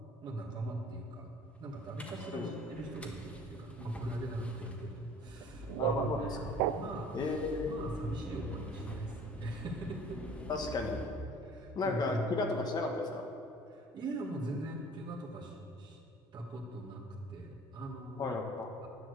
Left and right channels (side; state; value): both; normal; correlation 0.49